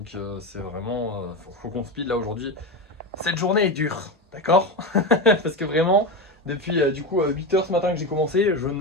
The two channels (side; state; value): both; normal; correlation 0.18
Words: c'est vraiment... faut qu'on speed là aujourd'hui. Cette journée est dure, d'accord? Parce que vraiment... Depuis du coup 8 h ce matin que j'ai commencé, je